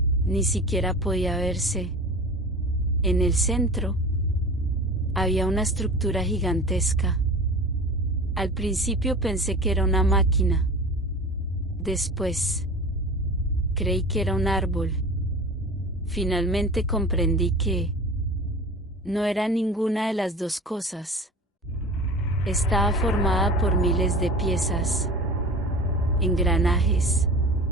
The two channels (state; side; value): normal; both; correlation 0.36